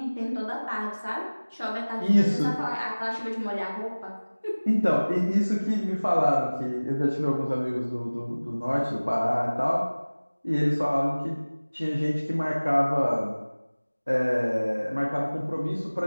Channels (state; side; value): inverted; both; correlation -1.00